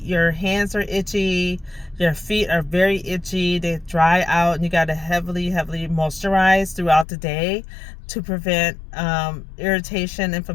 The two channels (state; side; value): drops out; right; at 7.1 s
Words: hands are itchy, your feet are very itchy, they dry out, and you got to heavily moisturize throughout the day to prevent irritation,